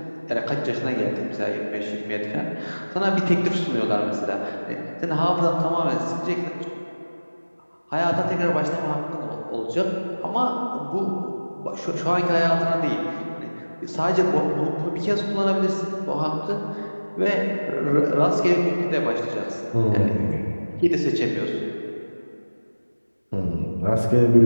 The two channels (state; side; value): inverted; both; correlation -1.00